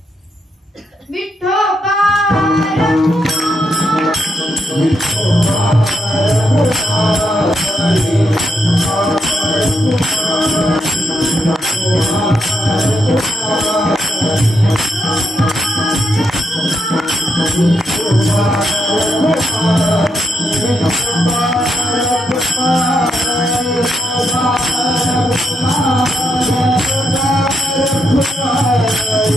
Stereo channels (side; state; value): both; normal; correlation 0.81